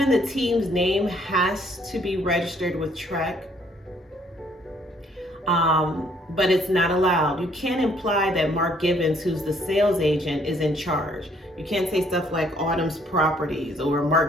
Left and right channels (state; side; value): normal; both; correlation 0.64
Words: the team's name has to be registered with TREC, but it's not allowed. You can't imply that Mark Givens, who's the sales agent, is in charge. You can't say stuff like Autumn's Properties or